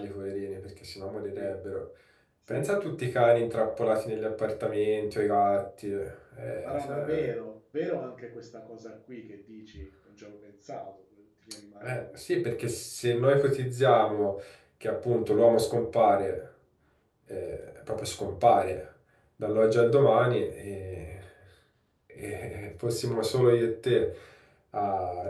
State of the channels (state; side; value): identical; both; correlation 1.00